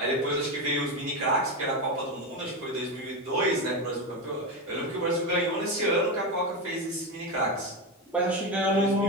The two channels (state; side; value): normal; both; correlation 0.15